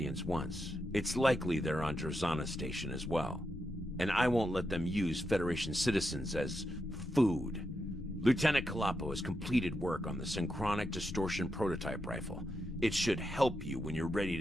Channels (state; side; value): normal; both; correlation 0.85